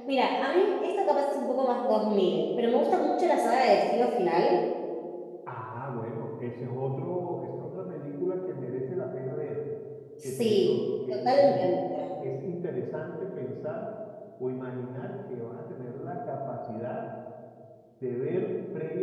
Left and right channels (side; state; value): both; identical; correlation 1.00